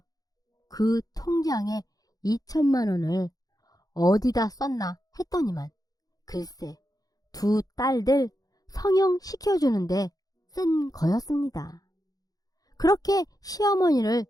그 통장에 2천만 원을 어디다 썼나 했더니만 글쎄 두 딸들 성형 시켜주는데 쓴 거였습니다. 그렇게 시어머니를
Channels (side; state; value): right; late; 0.18 ms